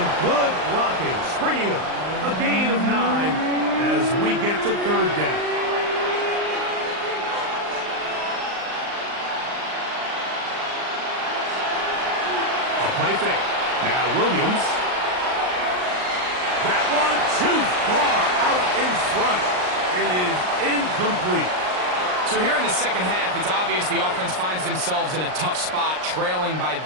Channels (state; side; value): late; left; 39 ms